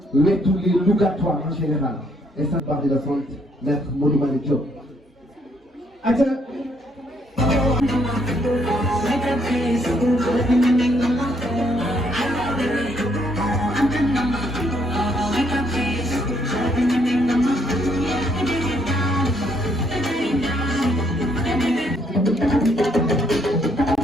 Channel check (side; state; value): both; normal; correlation 0.71